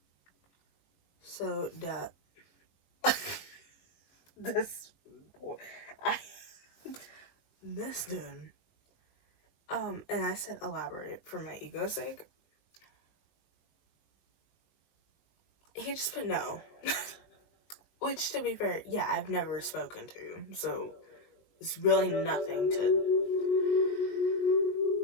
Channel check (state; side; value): late; right; 20 ms